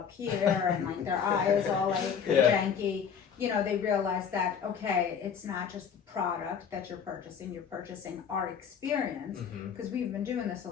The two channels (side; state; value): right; quieter; 7.2 dB